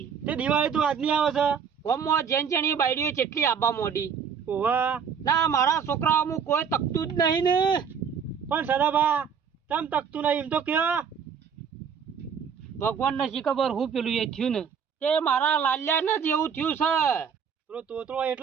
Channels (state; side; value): quieter; left; 7.0 dB